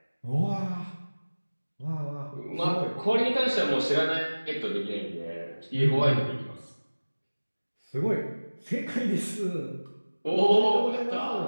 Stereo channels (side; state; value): both; inverted; correlation -1.00